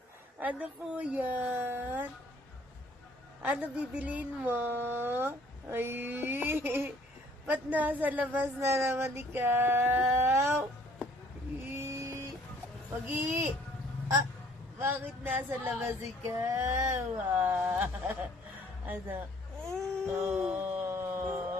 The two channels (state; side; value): normal; both; correlation 0.59